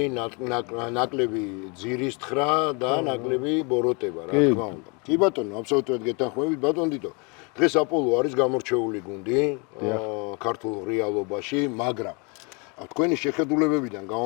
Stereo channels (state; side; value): quieter; right; 32.1 dB